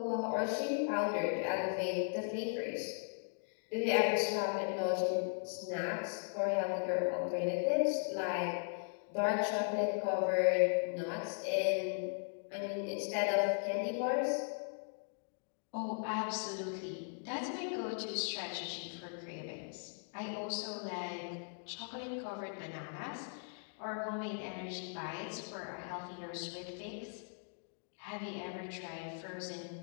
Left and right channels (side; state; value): right; silent; 52 dB below the other